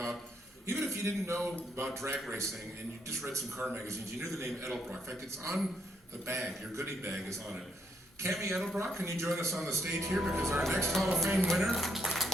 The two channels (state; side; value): normal; both; correlation 0.75